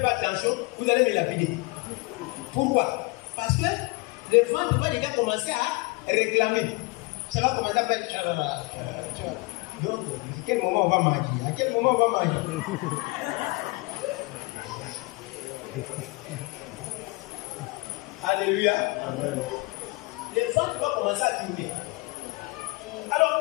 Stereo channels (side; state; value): right; quieter; 26.3 dB